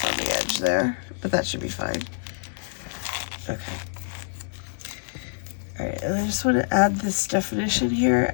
on the edge there, but that should be fine. Okay. All right, and I just want to add this definition here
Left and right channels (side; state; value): right; silent; digital silence